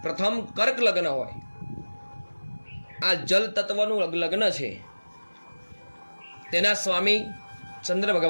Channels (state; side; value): inverted; both; correlation -1.00